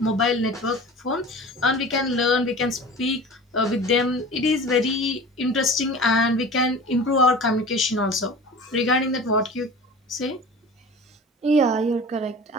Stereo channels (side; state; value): both; normal; correlation 0.38